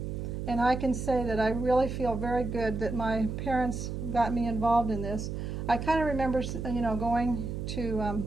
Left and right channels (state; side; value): noise; right; hum, 5 dB below the sound